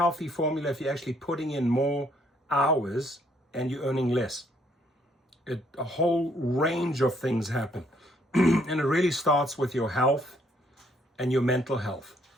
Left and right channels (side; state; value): both; normal; correlation 0.68